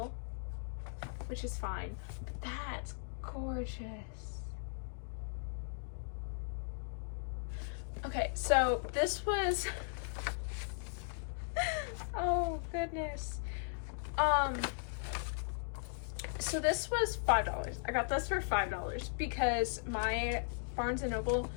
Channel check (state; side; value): silent; right; digital silence